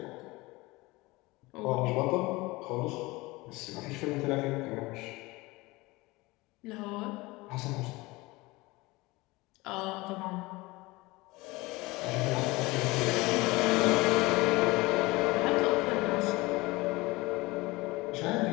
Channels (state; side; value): quieter; right; 22.0 dB